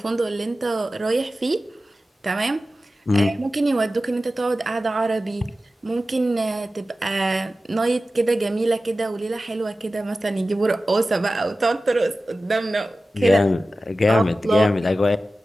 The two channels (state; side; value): normal; both; correlation 0.95